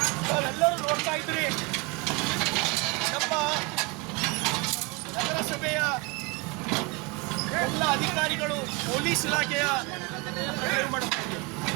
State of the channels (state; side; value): quieter; left; 26.9 dB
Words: ನಾವೆಲ್ಲರೂ ನೋಡ್ತಾ ಇದ್ರಿ, ನಮ್ಮ ನಗರಸಭೆಯ ಎಲ್ಲ ಅಧಿಕಾರಿಗಳು ಪೊಲೀಸ್ ಇಲಾಖೆಯ